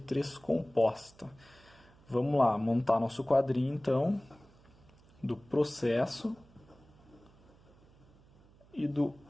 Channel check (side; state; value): right; noise; hum, 27 dB below the sound